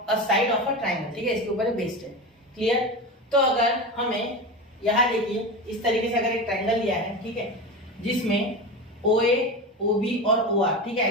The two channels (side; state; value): both; normal; correlation 0.24